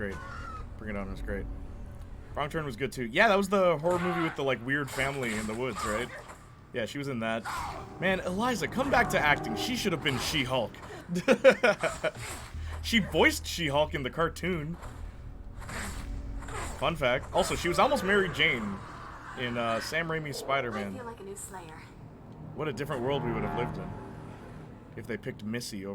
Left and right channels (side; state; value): both; identical; correlation 1.00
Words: Bring It On was great. Wrong Turn was good too. Yeah, that was the horror movie with the like weird family in the woods, right? Yeah, she was in that. Man, Eliza, come back to acting. She should have been She-Hulk. She voiced She-Hulk in the cartoon. Fun fact. Also, she was almost Mary Jane in Sam Raimi's Spider-Man. I feel like a new Slayer. What a different world we would have lived in if they picked Missy